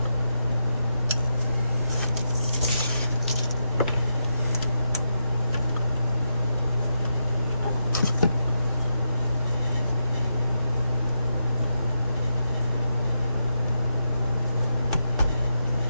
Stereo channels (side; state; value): both; inverted; correlation -0.84